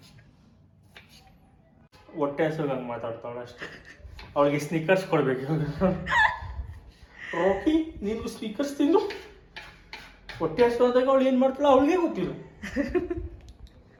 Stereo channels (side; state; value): both; identical; correlation 1.00